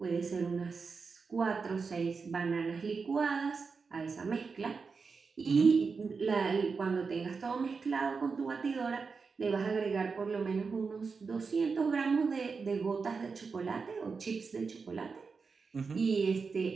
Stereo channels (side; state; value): left; quieter; 5.0 dB